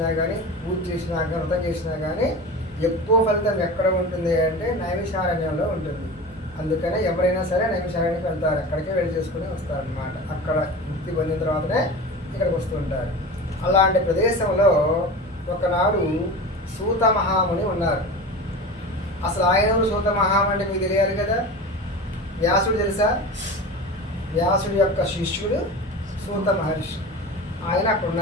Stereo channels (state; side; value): normal; both; correlation 0.31